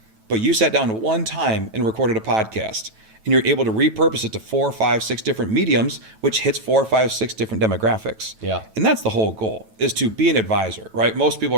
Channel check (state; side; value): late; left; 9.1 ms